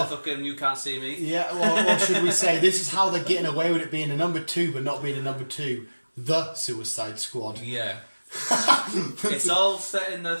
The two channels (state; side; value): inverted; both; correlation -1.00